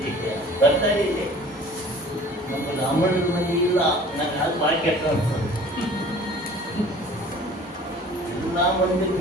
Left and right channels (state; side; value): normal; both; correlation 0.47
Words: ಬರ್ತಾ ಇದೆ. ನಮ್ಮ ಬ್ರಾಹ್ಮಣರ ಮನೆ ಇಲ್ಲ, ನನಗೆ ಅದು ಭಾಳ ಕೆಟ್ಟ ಅನ್ಸೋದು. ಎಲ್ಲ ಮಂದಿ